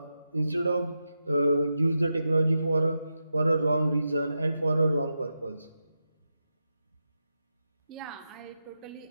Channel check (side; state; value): both; inverted; correlation -0.88